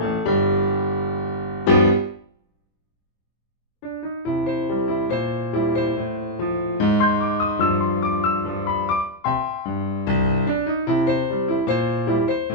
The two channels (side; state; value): right; late; 24 ms